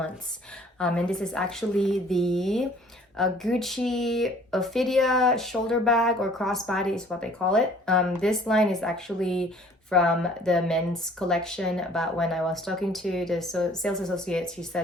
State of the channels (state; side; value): normal; both; correlation 0.54